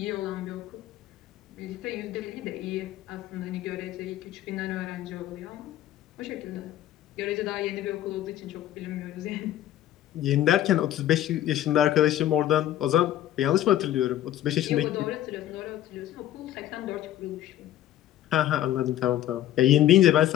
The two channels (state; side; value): quieter; right; 12.7 dB